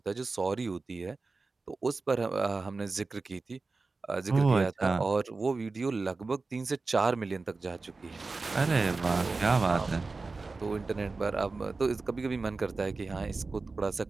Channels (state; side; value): quieter; left; 3.9 dB